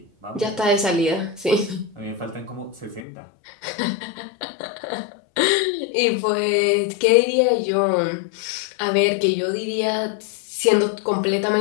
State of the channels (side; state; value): right; drops out; at 3.0 s